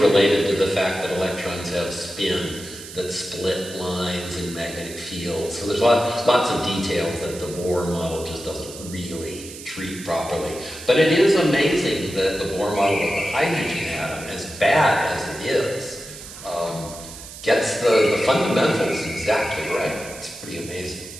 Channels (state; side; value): noise; right; hiss, 14 dB below the sound